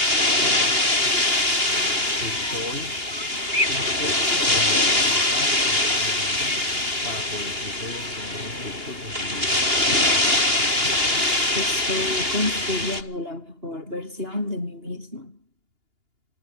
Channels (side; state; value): left; late; 2.8 ms